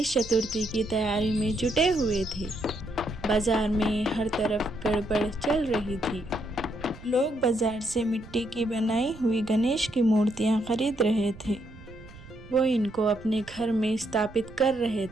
चतुर्थी की तैयारी में जुटे हुए थे। बाजार में हर तरफ गड़बड़ चल रही थी। लोग बाजार से मिट्टी की बनाई हुई गणेश की मूर्तियां खरीद रहे थे। वो इनको अपने घर में स्थापित कर रहे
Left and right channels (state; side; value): noise; right; rumble, 19 dB below the sound